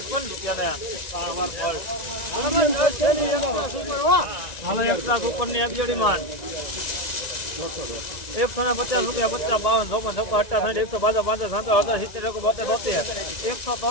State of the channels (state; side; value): late; right; 1.9 ms